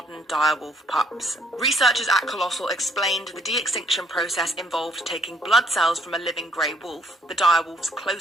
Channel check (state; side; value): normal; both; correlation 0.67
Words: direwolf pups. Researchers at Colossal explained the de-extinction process involved taking blood cells from a living grey wolf, the direwolf's